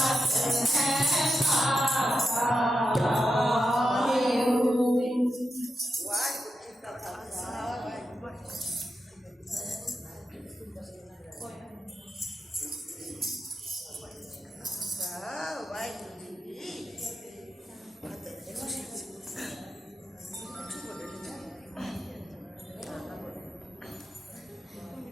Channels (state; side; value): normal; both; correlation 0.88